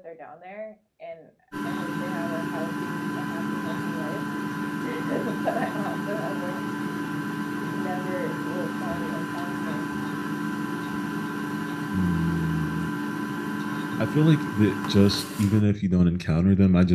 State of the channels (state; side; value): identical; both; correlation 1.00